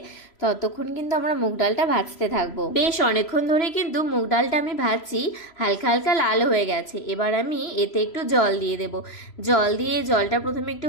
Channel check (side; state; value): right; late; 3.0 ms